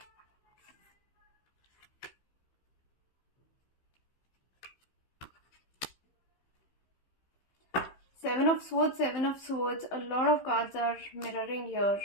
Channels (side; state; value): right; late; 15 ms